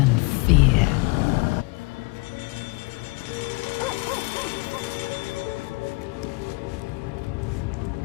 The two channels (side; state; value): right; quieter; 26.0 dB